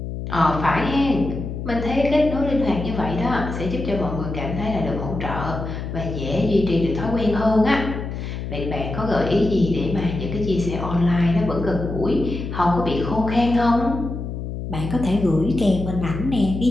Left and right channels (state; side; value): noise; left; hum, 6 dB below the sound